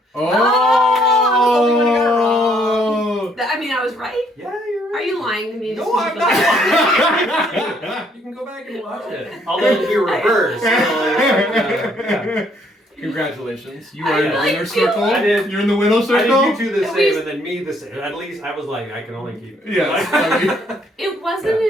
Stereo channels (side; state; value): both; normal; correlation 0.67